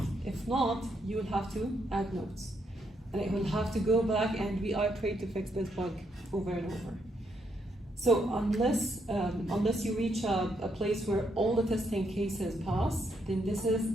If not, you will have to add notes. And it will have to go back and reiterate to fix this bug over and over. So unless you reach a place where all the testing cases pass, then this is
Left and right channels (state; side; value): normal; both; correlation 0.76